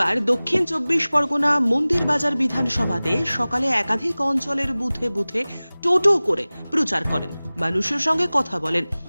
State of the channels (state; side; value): inverted; both; correlation -0.99